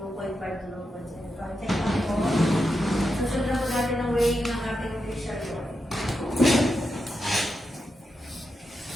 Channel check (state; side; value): normal; both; correlation 0.87